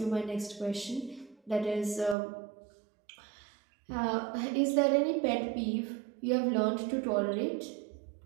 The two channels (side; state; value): left; drops out; at 2.1 s